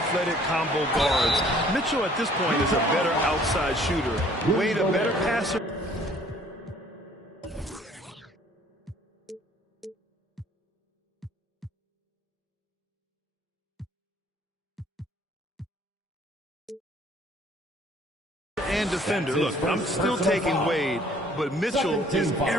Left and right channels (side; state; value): both; normal; correlation 0.57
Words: combo guards. Mitchell at this point is a better outside shooter. Wade a better passer. And defender. Look, I'm still taking Wade, but Mitchell is